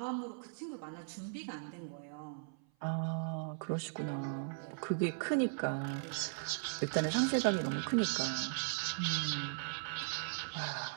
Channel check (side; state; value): left; silent; 52 dB below the other